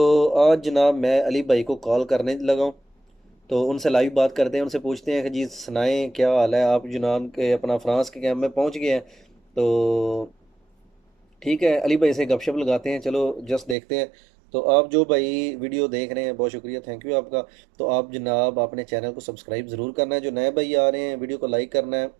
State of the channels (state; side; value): drops out; left; at 13.8 s